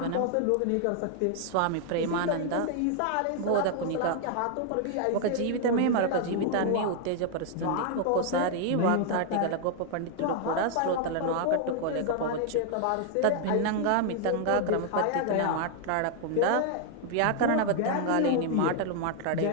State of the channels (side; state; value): both; different; correlation 0.00